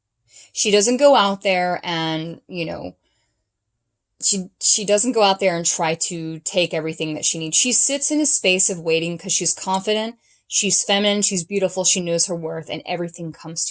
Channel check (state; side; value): identical; both; correlation 1.00